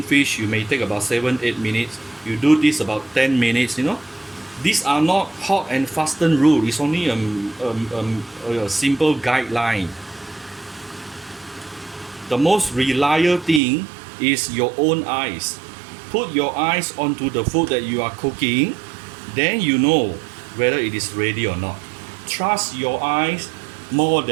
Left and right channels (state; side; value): drops out; left; at 13.6 s